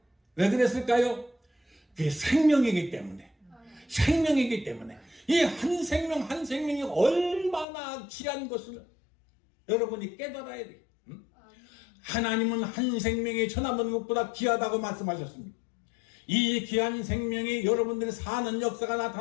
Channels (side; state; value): right; drops out; at 7.7 s